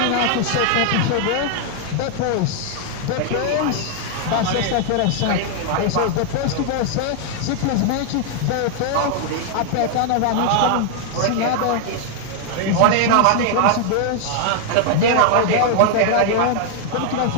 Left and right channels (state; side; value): different; both; correlation 0.00